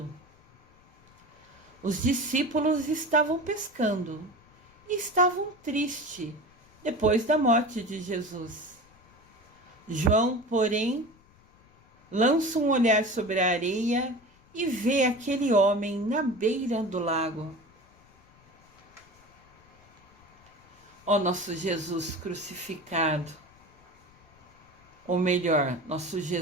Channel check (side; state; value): left; noise; rumble, 29 dB below the sound